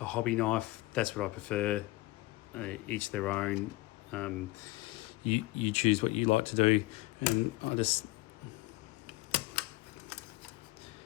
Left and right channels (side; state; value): right; quieter; 20.4 dB